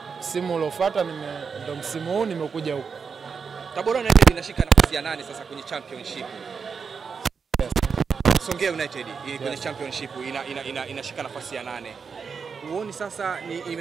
msimu uliofuata ndo msimu huu nimekuja huko. Tabora United inashika nafasi ya 8 sasa kwenye championship. Yes. Songea United kwenye championship inashika nafasi ya 8. Uone sasa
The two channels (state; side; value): quieter; left; 5.7 dB